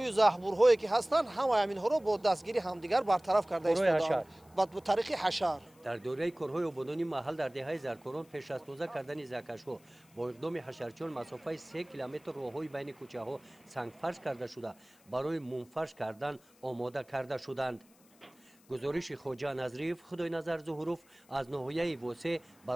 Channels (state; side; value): noise; left; hiss, 29 dB below the sound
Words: زهبورهایی که هستند همه همینها را با دستگیری همدیگر برطرف کرده ایستادند با طریق حشر. در دوره کارهای آبادانی محل در دهه زرکاران پیش از تازه کردن زهکش‌ها با اقدام حشرچیان مسافت 3 کیلومتر راههای بین کوچه‌ها سنگفرش کرده شده برای منفرش کردن آماده کرده شدند. گزارش خواجه نظریف خدای نظر ظهوروف از ناحیه وسع